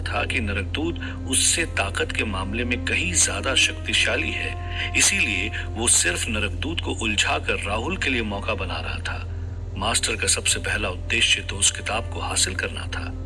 था कि नरकदूत उससे ताकत के मामले में कहीं ज्यादा शक्तिशाली है, इसीलिए वो सिर्फ नरकदूत को उलझाकर राहुल के लिए मौका बना रहा था। मास्टर का सबसे पहला उद्देश्य तो उस किताब को हासिल करना था।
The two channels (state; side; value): identical; both; correlation 1.00